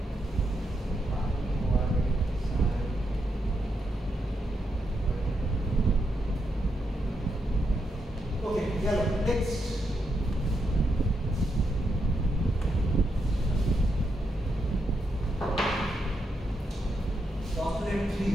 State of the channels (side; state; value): both; normal; correlation 0.82